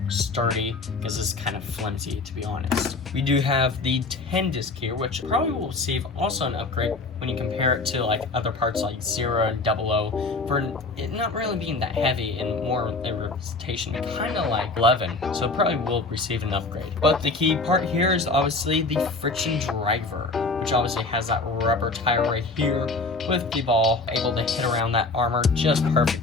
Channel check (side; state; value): right; quieter; 3.6 dB